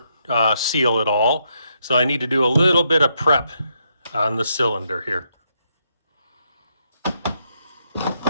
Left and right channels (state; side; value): inverted; both; correlation -0.78